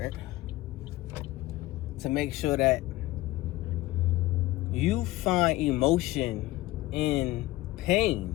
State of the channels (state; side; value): quieter; right; 18.0 dB